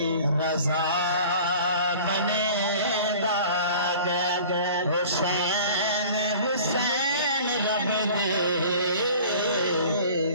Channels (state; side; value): inverted; both; correlation -0.44